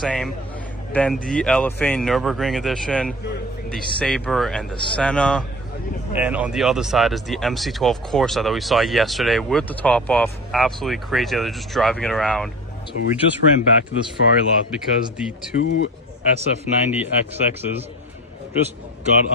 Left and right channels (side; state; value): both; normal; correlation 0.34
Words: Then the LFA Nürburgring edition, the Sabre and the Senna. And on the other side is the MC12 Corsa that we saw yesterday with the top off. Absolutely crazy. They're just driving it around. So we just ran back to this Ferrari lot because the two SF90 XXs just got